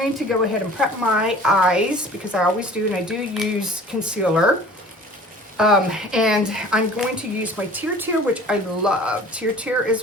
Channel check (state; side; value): normal; both; correlation 0.46